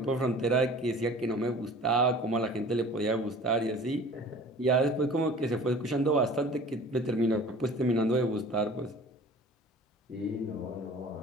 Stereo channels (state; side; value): normal; both; correlation 0.44